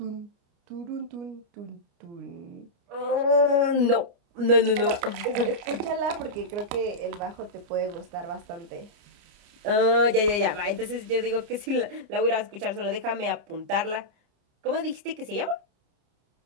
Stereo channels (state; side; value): late; left; 29 ms